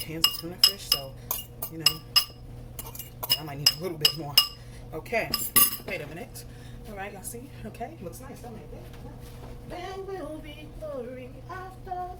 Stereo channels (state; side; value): identical; both; correlation 1.00